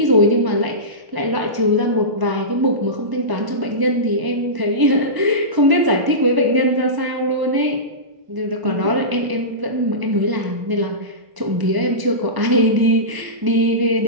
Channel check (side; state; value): left; late; 1.0 ms